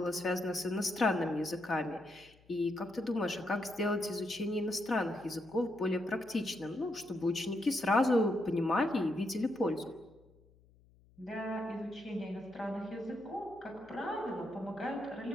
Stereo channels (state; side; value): noise; left; hum, 28 dB below the sound